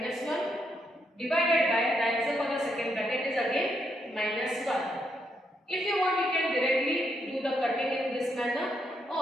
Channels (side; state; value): both; normal; correlation 0.78